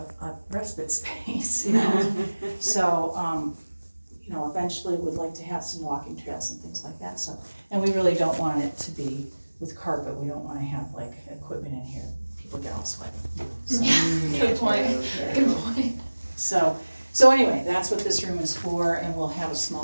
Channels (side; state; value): both; inverted; correlation -1.00